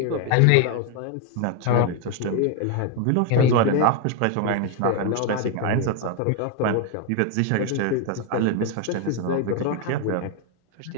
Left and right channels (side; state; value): both; different; correlation 0.01